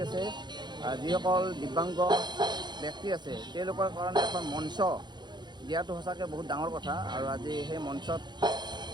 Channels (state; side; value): late; left; 0.21 ms